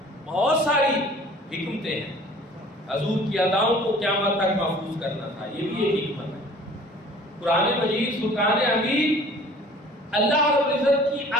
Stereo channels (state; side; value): normal; both; correlation 0.49